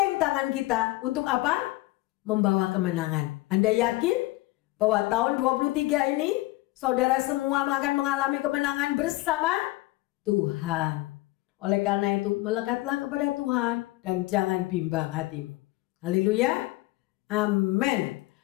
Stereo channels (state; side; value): quieter; right; 19.7 dB